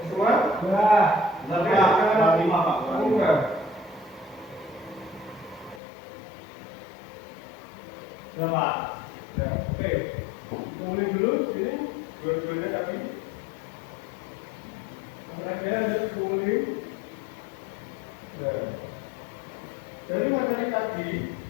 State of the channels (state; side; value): drops out; right; at 5.8 s